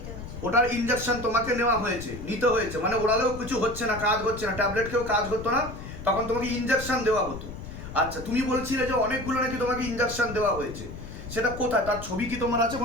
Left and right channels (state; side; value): noise; left; rumble, 11 dB below the sound